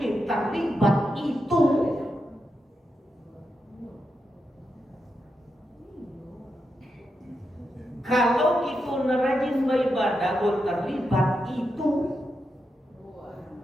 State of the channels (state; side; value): normal; both; correlation 0.86